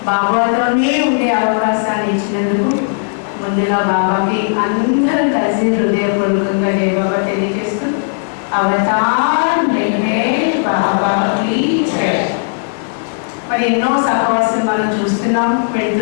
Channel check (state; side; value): silent; right; digital silence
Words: బాబాతోనే ఉండే అవకాశాన్ని ఇచ్చినందుకు ముందుగా బాబాకి అందరం కలిసి హృదయపూర్వకంగా జై బాబా తెలియజేస్తూ అవతార్ మెహర్ బాబా की जय. మరి ఎన్నో సహవాసం మనం చూస్తున్నాం,